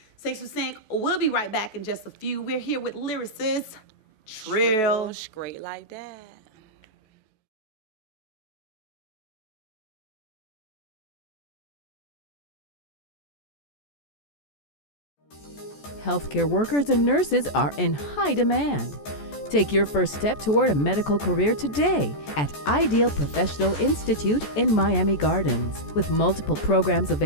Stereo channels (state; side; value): late; right; 14 ms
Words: Sync to Sync, we'll be right back in just a few. We're here with lyricist Trreal. Straight like that. Healthcare workers and nurses are in high demand. Take your first step toward a medical career today at Ideal Professional Institute in Miami Gardens. With multiple programs